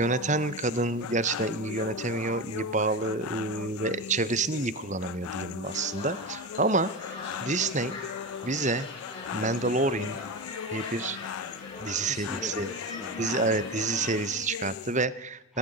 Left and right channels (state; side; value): normal; both; correlation 0.22